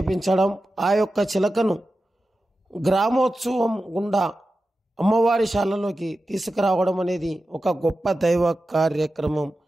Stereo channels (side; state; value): both; normal; correlation 0.93